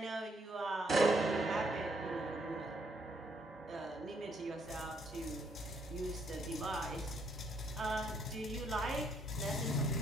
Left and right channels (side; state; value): both; normal; correlation 0.71